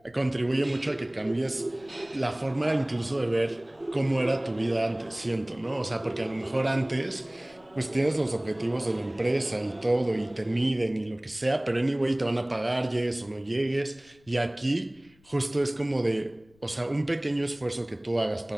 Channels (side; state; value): left; noise; rumble, 30 dB below the sound